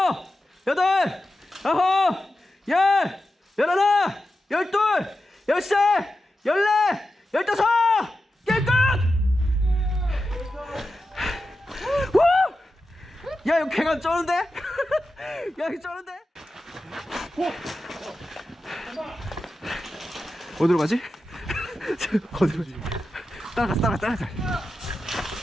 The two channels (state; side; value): normal; both; correlation 0.91